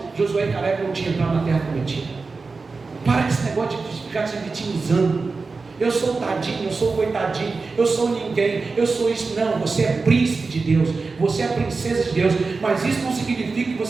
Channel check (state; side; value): quieter; left; 4.2 dB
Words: Josué e Caleb não tinham entrado na terra prometida. Para com esse negócio de ficar se vitimizando. Eu sou tadinho, eu sou coitadinho, eu sou ninguém, eu sou isso. Não, você é príncipe de Deus, você é princesa de Deus. Mas isso não significa que